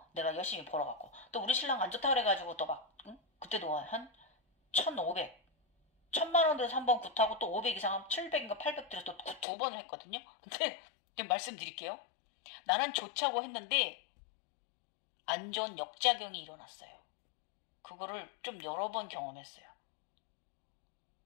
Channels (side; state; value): right; drops out; at 9.5 s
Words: 내가 열심히 벌어갖고 또 우리 신랑 안 좋다 그래가지고 또 막 그때도 한 1,500 1,000만 원 들여서 한 번 굿하고 또 500 이상 하면 700인가 800 들여서 또 굿 두 번을 했거든요. 근데 말씀드릴게요. 나는 좋자고 했는데 안 좋은 역작용이 일어났어요. 그거를 좀 여러 번 경험했어요.